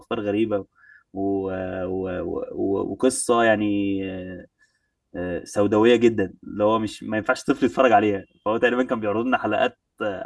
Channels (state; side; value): identical; both; correlation 1.00